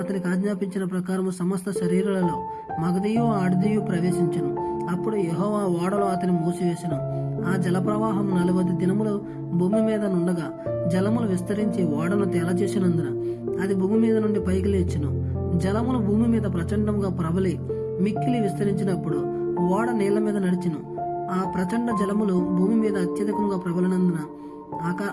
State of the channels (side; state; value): both; identical; correlation 1.00